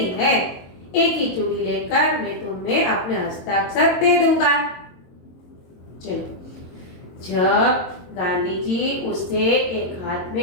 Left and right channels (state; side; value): late; right; 22 ms